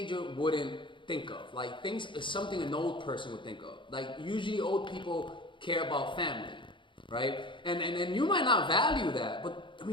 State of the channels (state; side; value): late; right; 0.24 ms